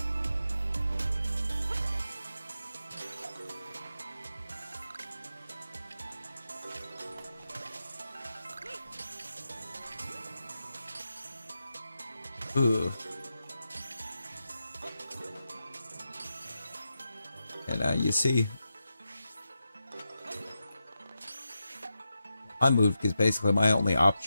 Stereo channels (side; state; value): both; inverted; correlation -0.89